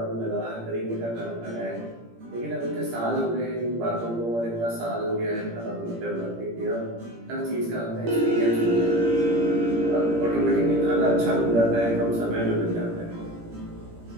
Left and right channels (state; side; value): late; left; 17 ms